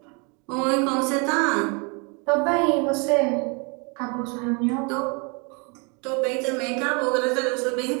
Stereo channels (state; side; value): quieter; left; 33.0 dB